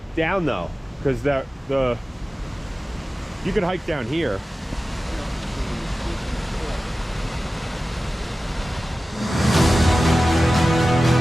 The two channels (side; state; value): both; normal; correlation 0.95